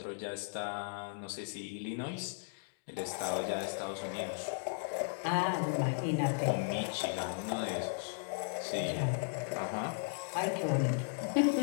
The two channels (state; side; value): silent; right; digital silence